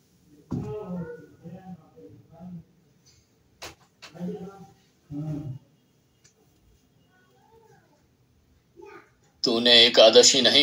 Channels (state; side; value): identical; both; correlation 1.00